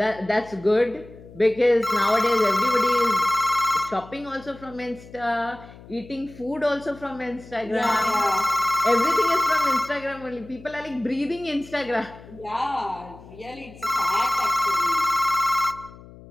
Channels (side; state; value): left; noise; hum, 19 dB below the sound